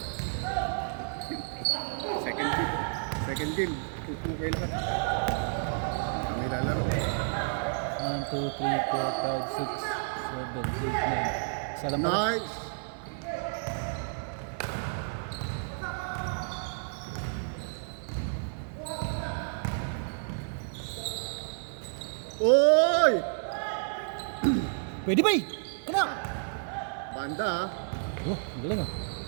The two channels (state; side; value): silent; left; 57 dB below the other